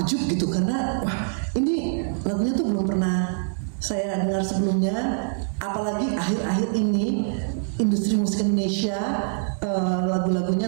gitu karena wah ini lagunya tuh belum pernah saya dengar sebelumnya, apalagi akhir-akhir ini industri musik Indonesia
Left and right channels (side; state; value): left; silent; digital silence